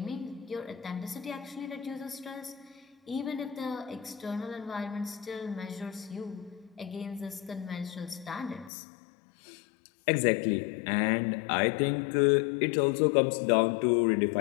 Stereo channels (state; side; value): drops out; right; at 8.7 s